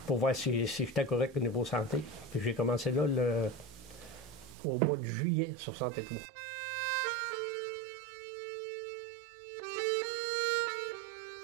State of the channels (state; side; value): drops out; left; at 4.5 s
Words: pour voir si j'étais correct au niveau santé. Puis j'ai commencé là au mois de juillet 63.